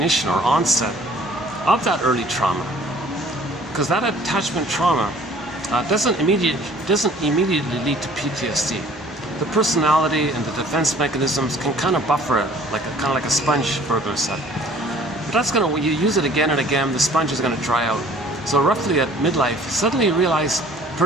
or onset of that early trauma, because that attachment trauma doesn't immediately lead to PTSD. The personality and the defense mechanisms can kind of buffer it, kind of like a sponge, Berger said. But when you use it again and again, the sponge is going to dry out. So roughly at midlife, suddenly you realize the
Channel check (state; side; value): normal; both; correlation 0.53